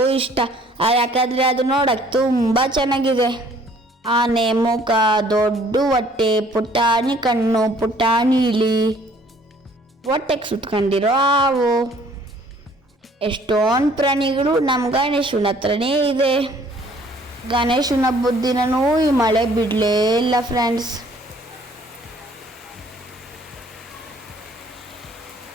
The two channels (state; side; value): normal; both; correlation 0.58